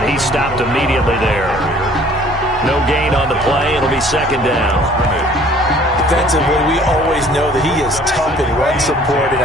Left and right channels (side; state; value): both; normal; correlation 0.54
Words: he stopped immediately there. No gain on the play. It'll be 2nd down. Defensively, we always know that he is tough in run support, and